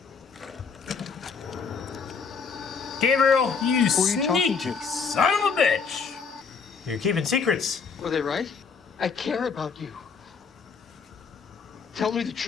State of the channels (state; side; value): quieter; right; 5.6 dB